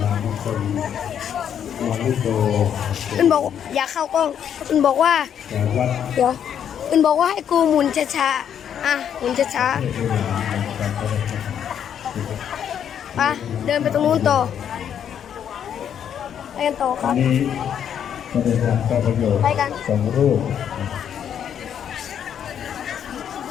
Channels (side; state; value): right; quieter; 8.9 dB